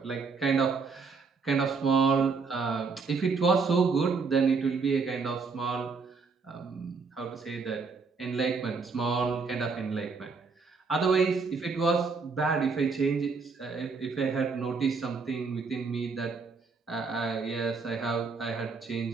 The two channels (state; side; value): quieter; left; 4.8 dB